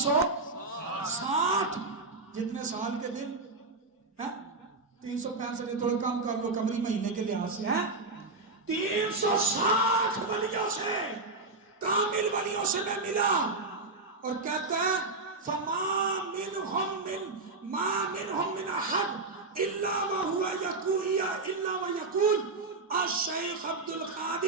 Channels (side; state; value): left; quieter; 3.5 dB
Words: جتنے سال کے دن ہیں، 365 تھوڑا کم کر لو قمری مہینے کے لحاظ سے ہیں. 360 ولیوں سے، کامل ولیوں سے میں ملا. اور کہتا ہے فما منهم من احد الا وهو يقول الشیخ عبد